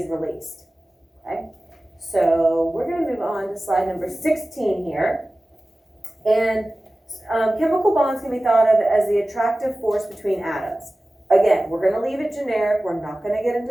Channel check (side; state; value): both; normal; correlation 0.96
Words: released. Okay? So we're going to move on to slide number 16 here. And chemical bonds can be thought of as the attractive force between atoms. Again, we're going to leave it generic. We're not going to get